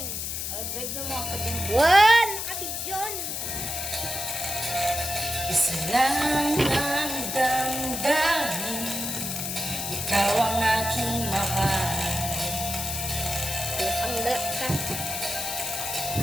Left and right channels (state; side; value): noise; left; hiss, 3 dB below the sound